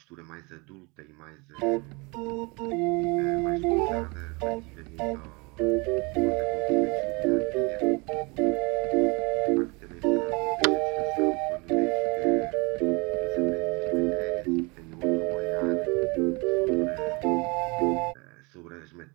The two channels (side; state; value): left; quieter; 28.3 dB